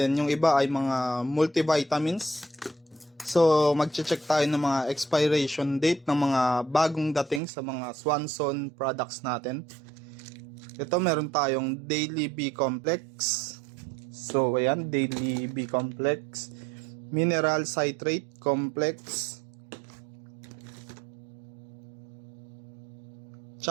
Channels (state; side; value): drops out; left; at 7.4 s